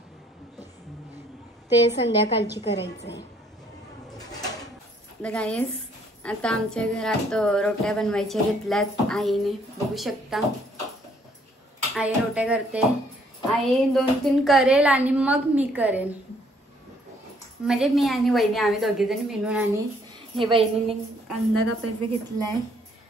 ते संध्याकाळची करायचं आहे. गाईस आता आमच्या घरात रोट्या बनवायच्या घेतल्यात आईने. बघू शकता आई रोट्या करते. आई 2-3 करेल आणि मग मी करेन. म्हणजे मी आणि वहिनी आम्ही दोघीजणी मिळून. आणि हे वहिनीने कांदा कापायचं घेतलाय.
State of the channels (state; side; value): normal; both; correlation 0.65